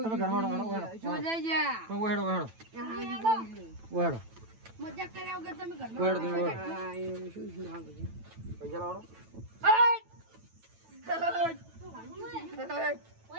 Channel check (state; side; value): late; left; 9.0 ms